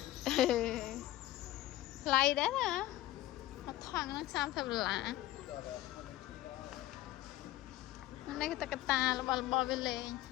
ថ្លៃដែរណាមកថងហ្នឹង$30នេះក៏តកតារបស់វាលេង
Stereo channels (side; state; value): right; quieter; 15.6 dB